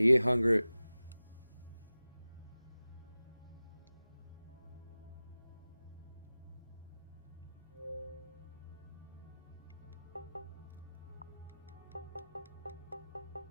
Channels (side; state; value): both; inverted; correlation -0.97